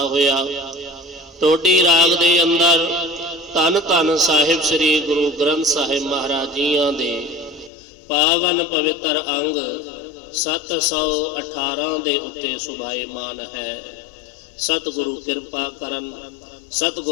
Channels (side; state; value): right; drops out; at 7.7 s